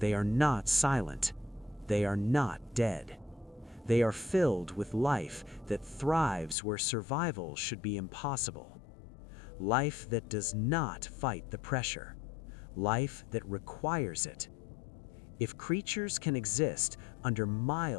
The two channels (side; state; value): right; drops out; at 6.6 s